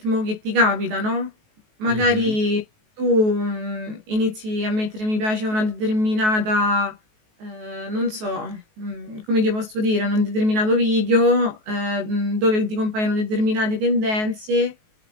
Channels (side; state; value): left; late; 19 ms